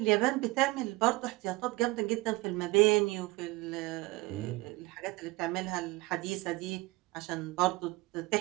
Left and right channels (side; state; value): left; quieter; 22.0 dB